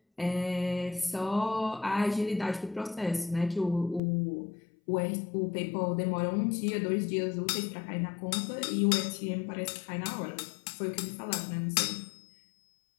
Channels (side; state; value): right; drops out; at 4.0 s